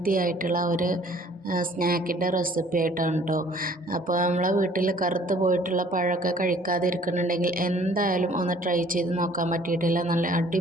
ആയിട്ടുള്ള ഒരു സ്നാക്കിൻ്റെ റെസിപ്പി ആയിട്ടാണ് കേട്ടോ. അപ്പോൾ നമ്മളെ വീട്ടിൽ കറുത്ത് പോയിട്ടുള്ള പഴമൊക്കെ കഴിക്കാതിരിക്കുന്നുണ്ടെങ്കിൽ എന്തായാലും ഒന്ന് ട്രൈ ചെയ്ത് നോക്കാൻ പറ്റിയിട്ടില്ല. നല്ല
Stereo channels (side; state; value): both; normal; correlation 0.55